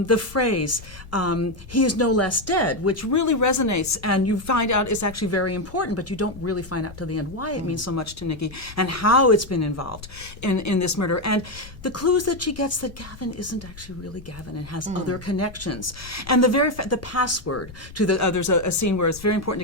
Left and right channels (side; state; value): left; noise; rumble, 17 dB below the sound